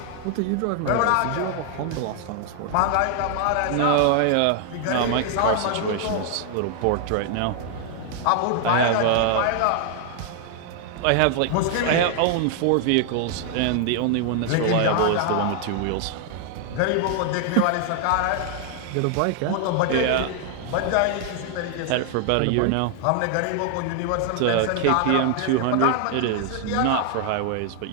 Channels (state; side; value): different; both; correlation 0.00